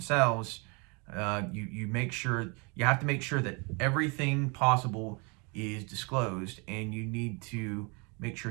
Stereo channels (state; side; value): quieter; left; 31.1 dB